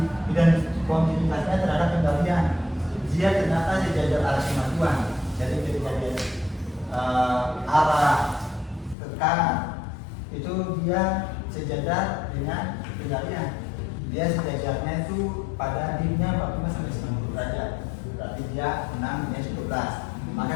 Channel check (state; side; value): drops out; right; at 9.0 s